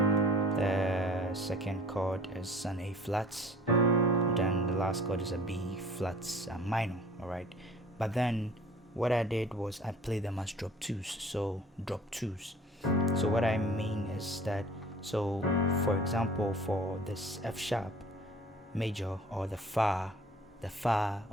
second chord is an A flat. Then the last chord is a B flat minor. All right, but then what I did was I played them as drop 2s. So drop 2s. So what I mean is that, so for example, for this F sharp major, or the fa,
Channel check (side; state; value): both; normal; correlation 0.48